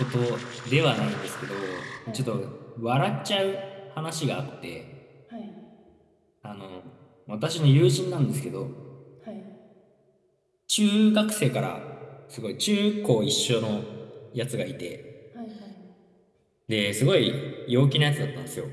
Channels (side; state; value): both; identical; correlation 1.00